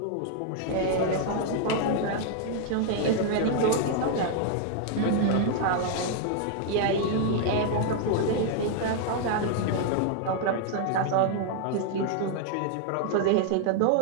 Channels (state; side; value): different; both; correlation 0.00